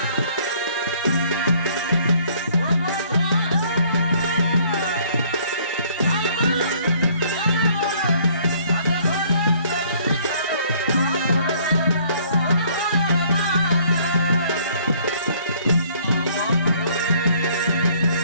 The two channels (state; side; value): inverted; both; correlation -0.60